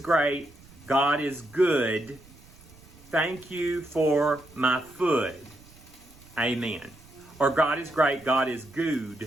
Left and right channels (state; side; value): noise; right; rumble, 24 dB below the sound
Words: God is good, thank you for my food. Amen. Or God is great, God is